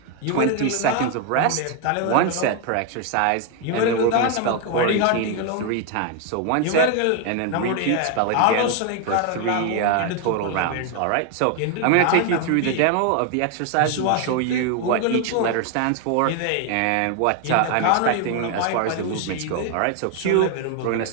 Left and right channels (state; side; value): different; both; correlation 0.01